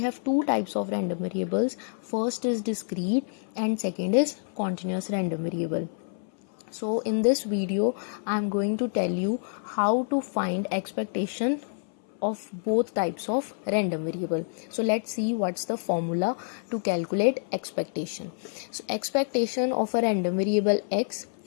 two types of random variables. First is discrete and second is continuous random variable. So in this video I am going to tell you how to find expectation of both types of random variable. So let's see what's the formula to calculate expectation. So expectation of a random variable x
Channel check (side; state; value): right; silent; 60 dB below the other